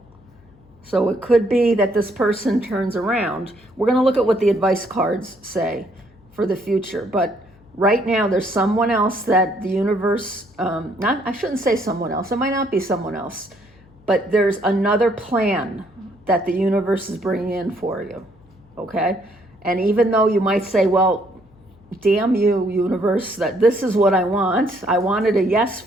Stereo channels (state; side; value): noise; left; hum, 28 dB below the sound